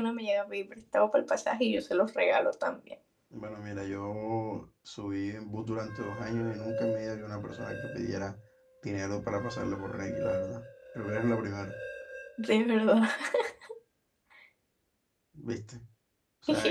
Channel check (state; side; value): identical; both; correlation 1.00